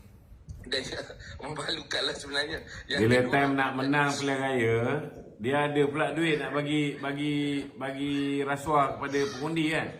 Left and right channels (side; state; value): both; identical; correlation 1.00